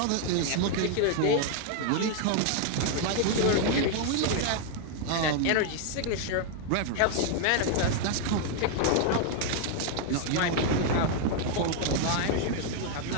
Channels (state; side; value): different; both; correlation 0.00